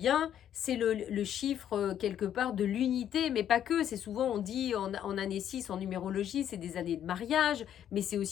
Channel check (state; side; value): quieter; right; 10.2 dB